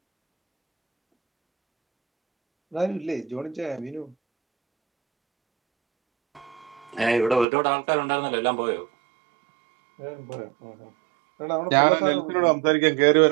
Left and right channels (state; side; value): drops out; left; at 7.5 s